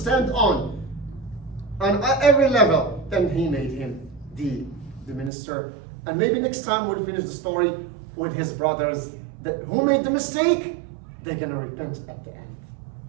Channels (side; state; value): left; drops out; at 5.3 s